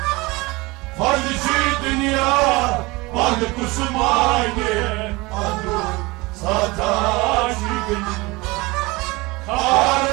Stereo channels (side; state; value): left; quieter; 23.2 dB